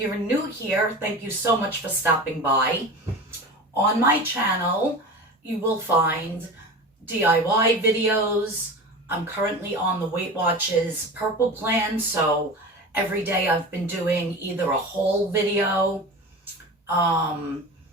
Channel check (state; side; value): normal; both; correlation 0.31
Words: new here, thank you so much for stopping by. On my channel, you will find DIY videos. I'm currently on the Weight Watchers Purple Plan, so every day I've been doing either a whole video, a